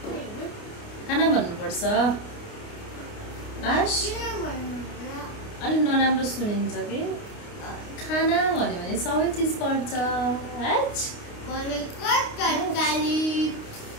खाना भन्नुपर्छ अलि नराम्रो सुनिन्छ कि खाना भन्यो भने सबै चिज पर्छ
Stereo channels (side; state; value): right; late; 29 ms